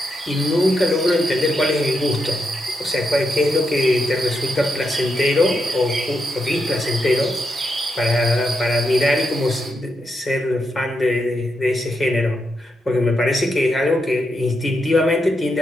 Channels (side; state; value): both; normal; correlation 0.83